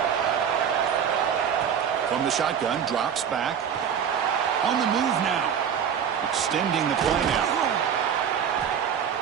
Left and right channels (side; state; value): left; quieter; 8.1 dB